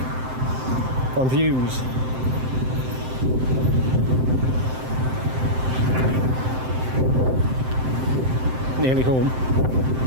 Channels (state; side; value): late; left; 7.7 ms